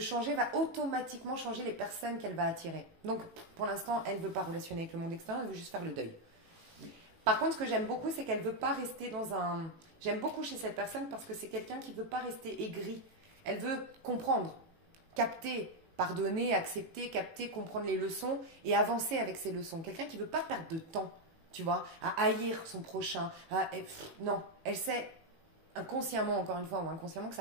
va automatiquement changer les personnes qu'elle va attirer. Donc, pour l'instant, elle ne veut pas relationner avec le monde extérieur, elle veut juste faire le deuil. Par contre, ce que j'aime beaucoup, c'est qu'elle ne veut pas rester dans un... J'aime beaucoup chez cette personne parce que c'est quelqu'un qui ne veut pas rester aigri. Elle veut comprendre, capter, pardonner, accepter, capter, comprendre les leçons et avancer avec ces leçons. Quelqu'un qui ne veut pas perdre de temps. Tu vois, à haïr son prochain. Non, elle sait inconsciemment, encore une fois, ou inconsciemment, que ça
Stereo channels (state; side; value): late; left; 18 ms